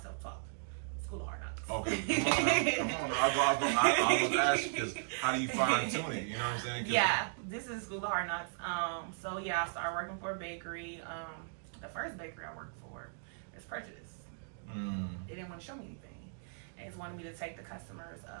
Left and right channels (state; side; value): silent; left; digital silence